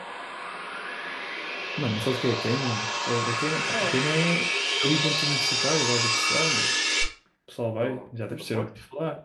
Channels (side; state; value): both; identical; correlation 1.00